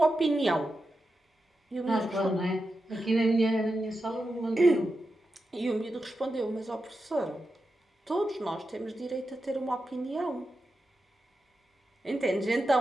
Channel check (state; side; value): normal; both; correlation 0.89